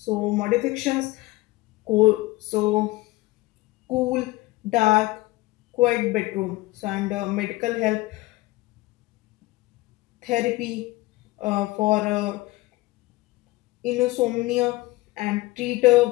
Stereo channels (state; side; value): quieter; right; 19.9 dB